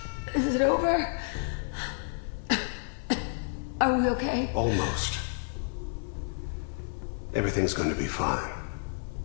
Is it over? Are we okay? Almost. Everything's going to be fine.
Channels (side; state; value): right; silent; 58 dB below the other